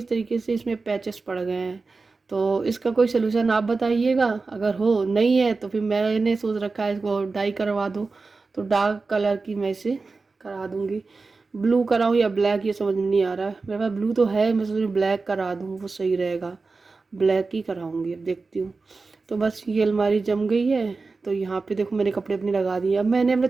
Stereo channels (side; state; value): left; quieter; 4.0 dB